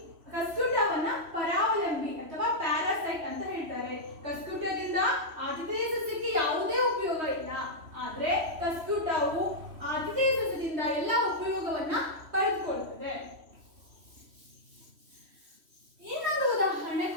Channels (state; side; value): late; left; 3.0 ms